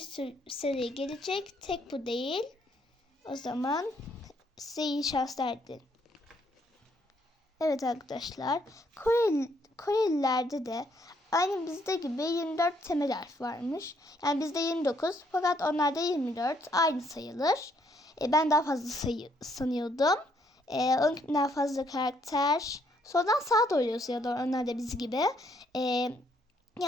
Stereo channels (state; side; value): normal; both; correlation 0.70